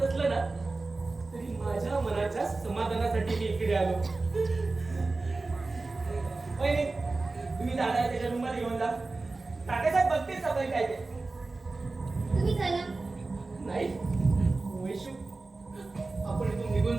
नसलं ना, तरी माझ्या मनाच्या समाधानासाठी मी इकडे आलो. वहिनी, तुम्ही दादा त्याच्या रूममध्ये घेऊन जा. तात्यासाहेब बघतील सगळं काय ते. तुम्ही चला. नाही वैशू, आपण इथून निघून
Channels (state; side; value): quieter; left; 3.5 dB